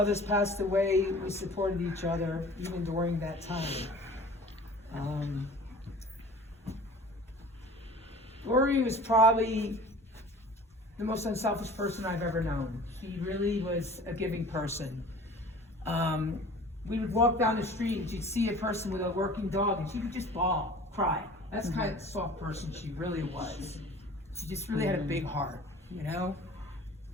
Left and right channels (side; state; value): both; normal; correlation 0.44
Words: passed away, we supported each other, even during that time. Lori was probably the most unselfish person I've ever known. She really was a giving person. We would walk down the street and she'd see a person with a working dog and she would just bawl, cry. That's the kind of soft person she really was. She just really had a big heart, you know?